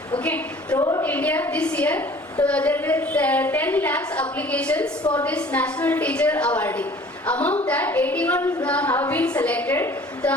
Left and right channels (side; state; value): both; normal; correlation 0.49